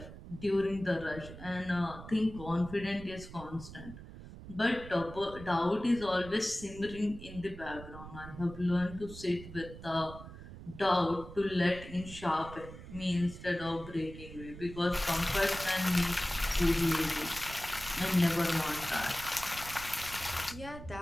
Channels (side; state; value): right; noise; rumble, 14 dB below the sound